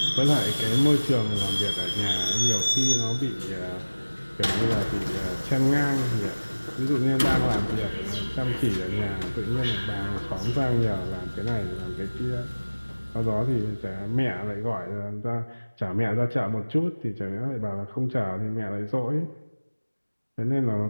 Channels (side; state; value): both; inverted; correlation -1.00